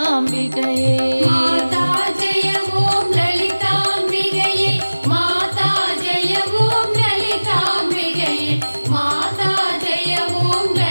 மாதா ஜெய ஓம் லலிதாம்பிகையே, மாதா ஜெய ஓம் லலிதாம்பிகையே, மாதா ஜெய ஓம்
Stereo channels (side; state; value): both; inverted; correlation -1.00